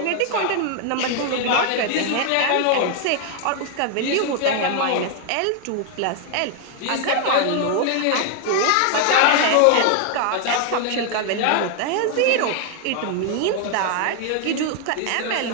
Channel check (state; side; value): different; both; correlation 0.00